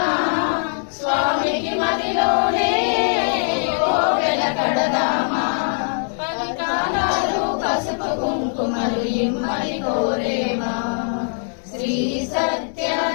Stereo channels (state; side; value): silent; right; 65 dB below the other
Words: స్వామికి మదిలోనే కోవెల కడదామా. 10 కాలాలు పసుపు కుంకుమలు ఇమ్మని కోరేమా. శ్రీ